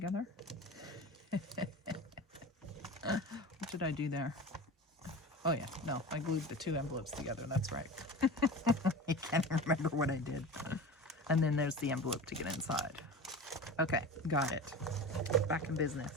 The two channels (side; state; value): both; normal; correlation 0.32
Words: What did I do there? Oh yeah, no, I glued the two envelopes together, that's right. I can't remember what I did. And then there's the envelope to get inside. Okay, got it. Back in business.